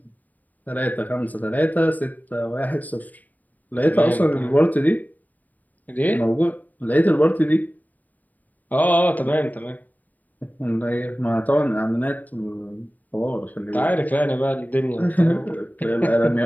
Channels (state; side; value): late; right; 0.081 ms